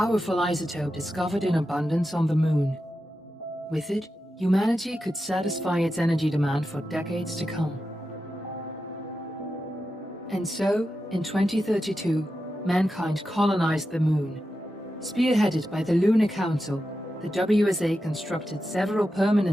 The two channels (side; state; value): both; normal; correlation 0.90